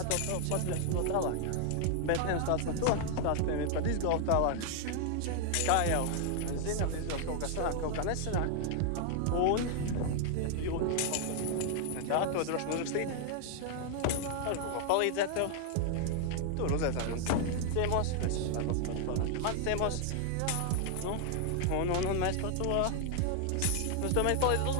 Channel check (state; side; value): different; both; correlation 0.00